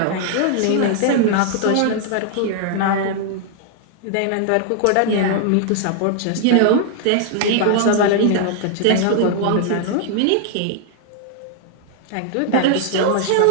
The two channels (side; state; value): both; different; correlation 0.00